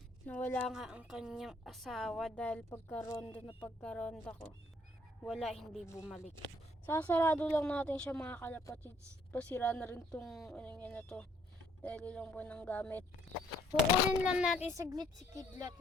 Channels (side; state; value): both; normal; correlation 0.64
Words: nga ang kanyang asawa dahil pagkaronda ko. Wala, hindi bumalik. Sasarado lang natin siya mga kalapatids. Pasira na rin tong na to. Dahil lang po ng gamit. Kukunin lang natin saglit si Kidlat